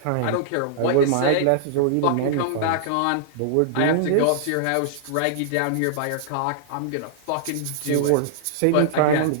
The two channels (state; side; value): different; both; correlation -0.01